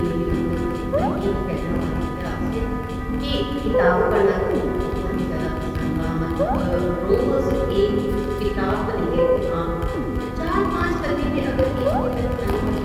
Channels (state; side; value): identical; both; correlation 1.00